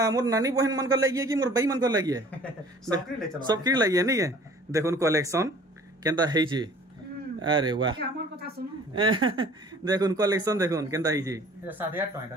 मोर नानी बहन मन कर लगी है कि मोर भाई मन कर लगी है सबकी लगी है नहीं है देखुन कलेक्शन केंता है जी अरे वाह देखुन कलेक्शन देखुन केंता है जी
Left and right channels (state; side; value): normal; both; correlation 0.50